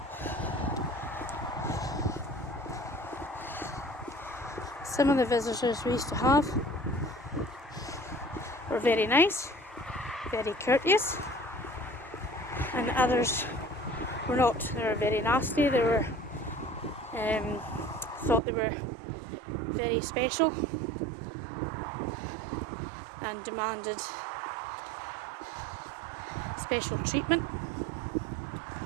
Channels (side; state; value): left; drops out; at 18.4 s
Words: Some of the visitors we used to have were very nice, very courteous, and others were not. They were very nasty. They were thought they were very special and demanded special treatment